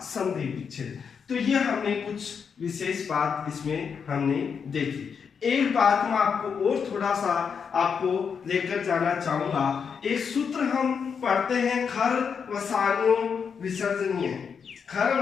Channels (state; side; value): quieter; right; 6.5 dB